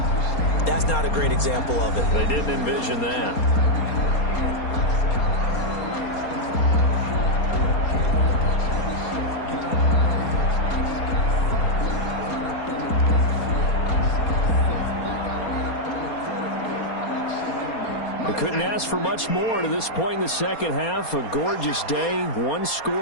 That's not a great example of it. They didn't envision that. Couldn't ask for much more to this point in the second half. A gorgeous day,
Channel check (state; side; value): late; right; 4.3 ms